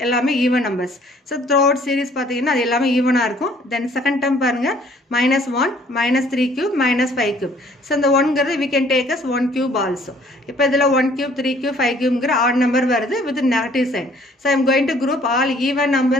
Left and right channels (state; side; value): normal; both; correlation 0.59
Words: எல்லாமே even numbers. So throughout series பாத்தீங்கன்னா அது எல்லாமே ஈவனா இருக்கும். Then second term பாருங்க -1 -3 cube -5 cube. So இந்த 1 ங்கிறது we can take as 1 cube also. இப்போ இதுல 1 cube 3 cube 5 cube ங்கிற odd number வருது with negative sign. So I am going to group all even